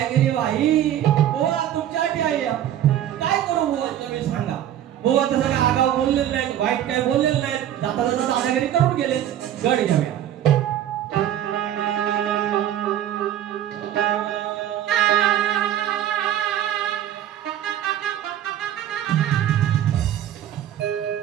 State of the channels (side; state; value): left; quieter; 11.3 dB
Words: केली बाई. बुवा तुमच्यासाठी आहे, काय करू बुवा तुम्ही सांगा. बुवा तसं काय आगाव बोललेलं नाही, वाईट काय बोललेलं नाही, जाता जाता दादागिरी करून गेले. गड घेऊया.